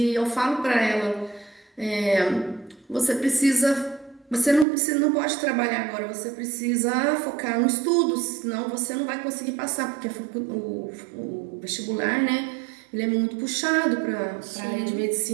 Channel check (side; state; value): left; drops out; at 4.7 s